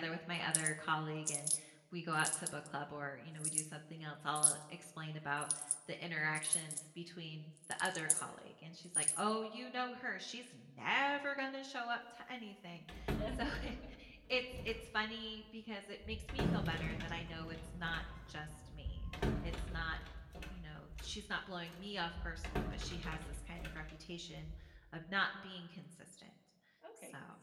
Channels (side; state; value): both; identical; correlation 1.00